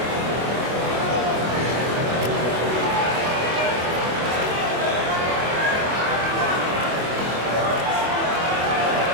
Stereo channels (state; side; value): late; left; 24 ms